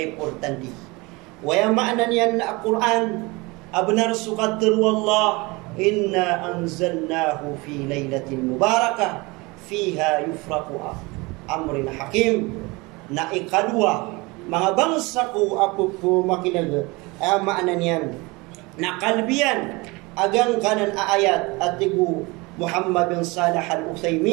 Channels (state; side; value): quieter; left; 24.8 dB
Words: importanti. Waya maanan yan na Quran, abnar sukatir wallah, inna anzalnahu fi laylatin mubarakah, fiha yufraku amrin hakim, na ikadua, mga bangsa ko apo po makinaga, ay maanan yan, na kalbiyan, agang kanan ayat at tigu Muhammad bin Salih